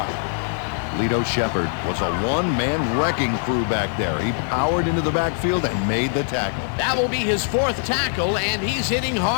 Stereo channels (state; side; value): silent; right; 56 dB below the other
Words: Lito Shepard was a one-man wrecking crew back there. He powered into the backfield and made the tackle. That will be his 4th tackle, and he's hitting